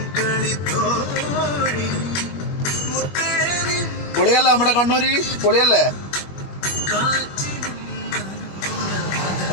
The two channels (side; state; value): right; late; 21 ms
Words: പൊളിയല്ലേ നമ്മുടെ കണ്ണൂര്, പൊളിയല്ലേ?